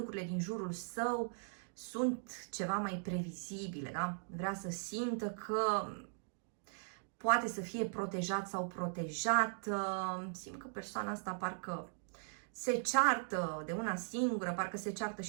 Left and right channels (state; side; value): silent; left; digital silence